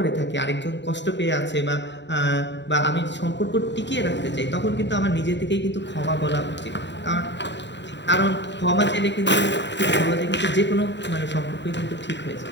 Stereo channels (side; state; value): right; late; 0.52 ms